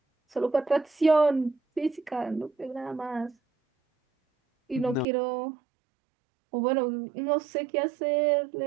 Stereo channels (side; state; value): left; drops out; at 5.1 s